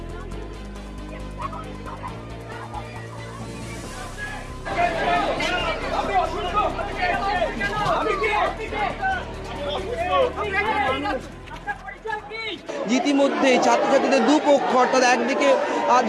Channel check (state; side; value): identical; both; correlation 1.00